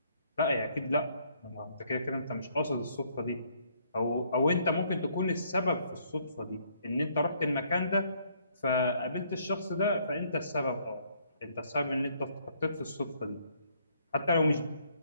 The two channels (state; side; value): inverted; both; correlation -0.67